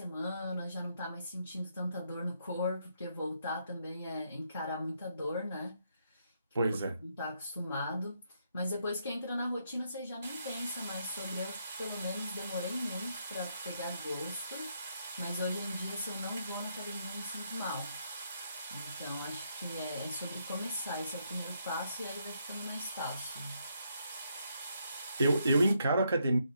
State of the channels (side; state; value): both; inverted; correlation -0.76